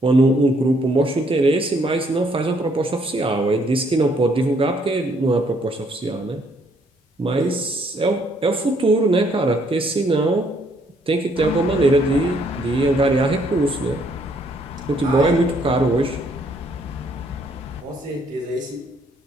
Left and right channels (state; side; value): normal; both; correlation 0.68